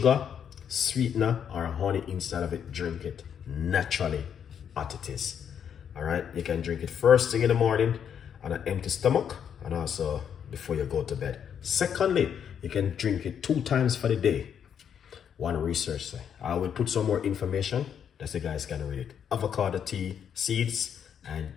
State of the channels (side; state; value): right; quieter; 8.3 dB